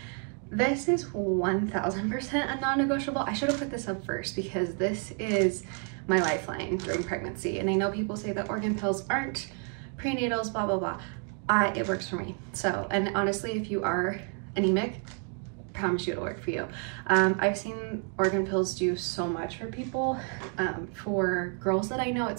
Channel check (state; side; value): quieter; left; 39.3 dB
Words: this is 1000% a non-negotiable. I should have put this up first because this is my lifeline during pregnancy. And I know people say that organ pills aren't prenatals, blah, blah, blah. It works for me. So, and honestly, if you are anemic, I promise you it'll work for you. I've seen organ pills do so much for people. For girls that I know,